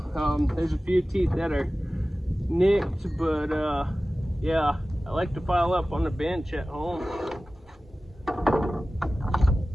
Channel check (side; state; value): both; normal; correlation 0.96